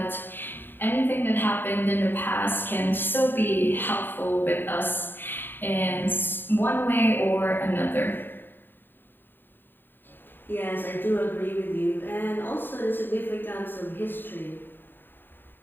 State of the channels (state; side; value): late; right; 0.095 ms